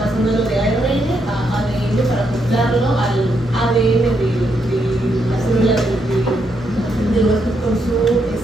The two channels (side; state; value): both; normal; correlation 0.78